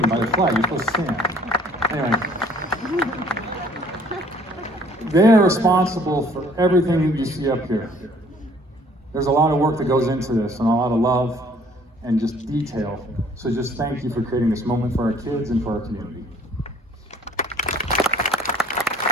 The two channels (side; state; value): both; normal; correlation 0.57